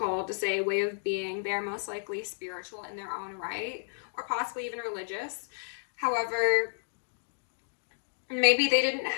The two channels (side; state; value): right; silent; digital silence